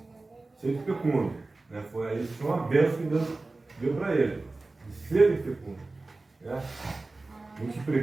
sede fecundo. Né? Foi aí que foi uma bênção que Deus deu para ele. De sede fecundo. Né?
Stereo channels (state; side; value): quieter; left; 3.3 dB